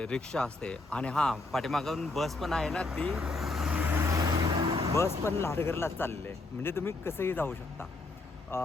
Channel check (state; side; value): quieter; right; 3.3 dB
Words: रिक्षा असते आणि हां, पाठीमागून बस पण आहे ना, ती बस पण लाडगरलाच चाललेली आहे, म्हणजे तुम्ही कसंही जाऊ शकता.